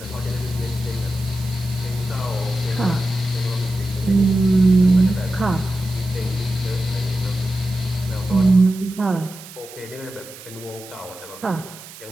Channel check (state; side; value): noise; right; hiss, 17 dB below the sound